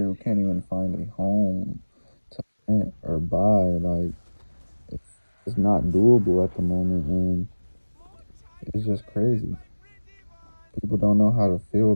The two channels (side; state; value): both; inverted; correlation -1.00